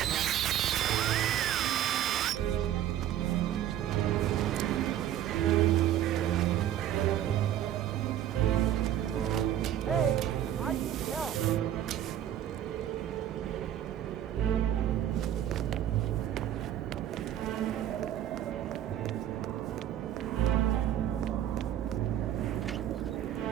Hey, I need help.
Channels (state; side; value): quieter; left; 11.4 dB